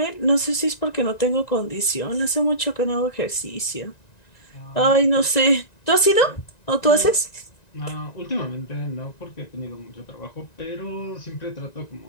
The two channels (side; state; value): right; late; 1.9 ms